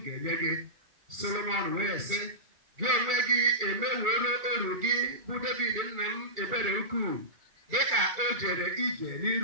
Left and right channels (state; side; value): late; left; 2.3 ms